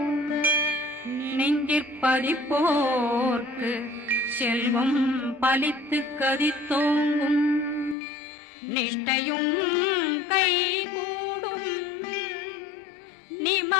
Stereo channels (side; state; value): right; drops out; at 8.0 s